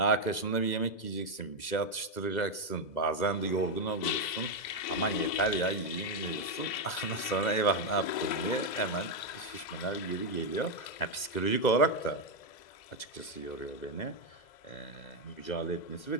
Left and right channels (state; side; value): late; right; 2.0 ms